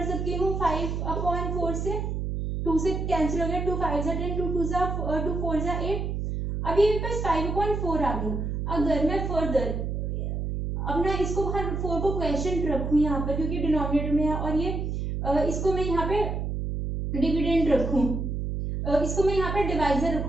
सकती हूँ 5 अपॉन 4 से, 2 से कैंसिल हो गया, 2 5 जा 10, 2 2 जा 2 4 जा 8। अभी मेरे पास 5 अपॉन 4 आ गया। अगर मैं फर्दर अपना इसको 4 को क्वेश्चन रखूँ यहाँ पर, क्योंकि डिनोमिनेटर में है, और ये इसको मैं यहाँ पे डिविडेंड रखूं, इसको मैं यहाँ पे डिवाइजर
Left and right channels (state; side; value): noise; right; hum, 2 dB below the sound